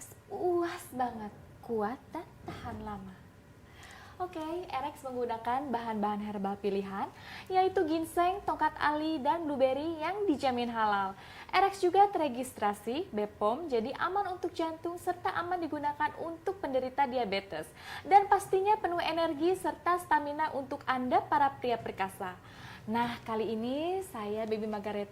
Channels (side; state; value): both; identical; correlation 1.00